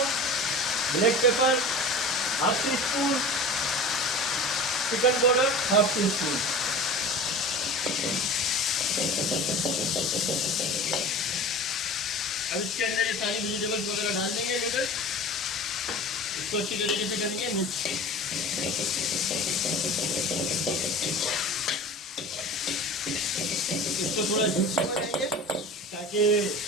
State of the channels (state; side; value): normal; both; correlation 0.37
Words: black pepper half tea spoon, chicken powder half tea spoon. अब इसके अंदर ये सारी वेजिटेबल्स वगैरह डाल देंगे, नूडल्स। इसको अच्छी तरीके से करेंगे मिक्स। इसको थोड़ा जूसी बनाएंगे ताकि